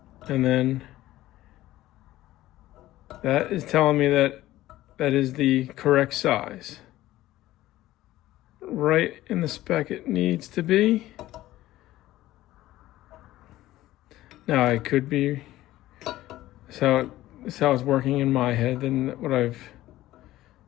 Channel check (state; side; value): quieter; right; 15.6 dB